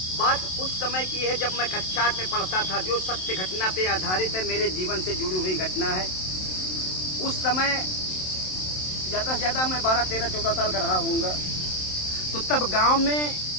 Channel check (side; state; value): right; late; 27 ms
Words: बात उस समय की है जब मैं कक्षा 8 में पढ़ता था, जो सत्य घटना पे आधारित है, मेरे जीवन से जुड़ी हुई घटना है। उस समय ज़्यादा से ज़्यादा मैं 12, 13, 14 साल का रहा होऊंगा। तो तब गांव में